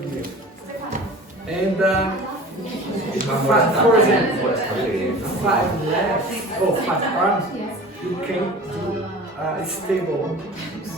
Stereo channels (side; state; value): both; normal; correlation 0.40